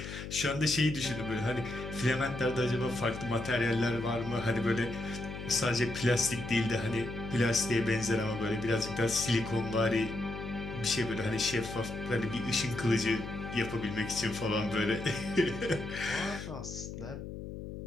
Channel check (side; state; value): left; noise; hum, 9 dB below the sound